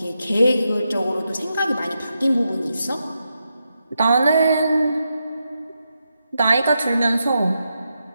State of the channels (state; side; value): inverted; both; correlation -0.85